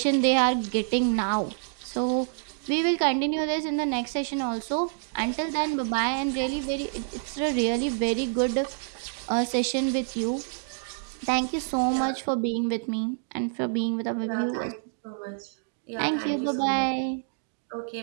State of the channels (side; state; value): left; silent; digital silence